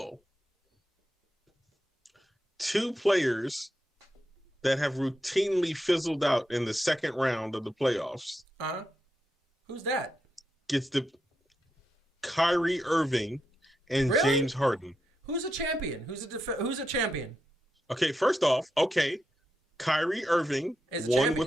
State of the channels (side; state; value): both; normal; correlation 0.85